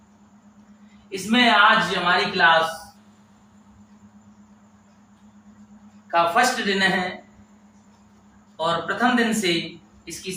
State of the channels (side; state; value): both; identical; correlation 1.00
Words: इसमें आज हमारी क्लास का फर्स्ट दिन है और प्रथम दिन से इसकी